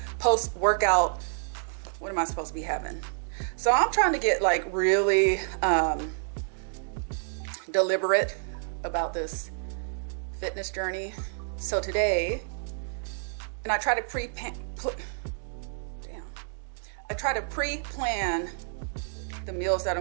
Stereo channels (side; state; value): left; silent; digital silence